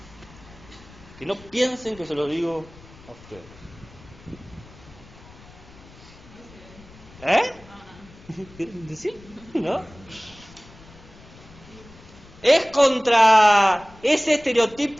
Que no piensen que se lo digo a ustedes. ¿Sí? ¿No? Es contra ese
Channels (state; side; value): noise; left; rumble, 22 dB below the sound